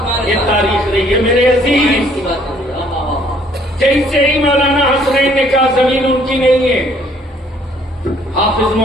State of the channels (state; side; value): normal; both; correlation 0.62